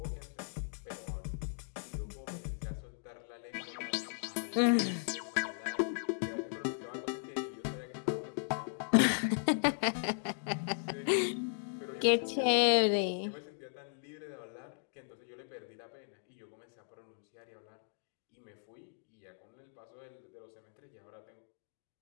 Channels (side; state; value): right; silent; digital silence